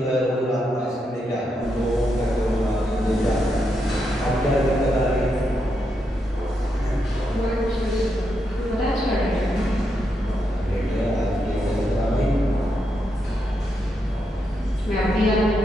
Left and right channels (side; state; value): both; normal; correlation 0.82